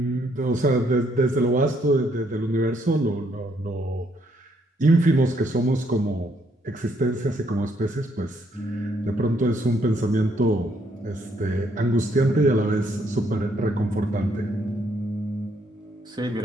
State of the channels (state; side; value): normal; both; correlation 0.71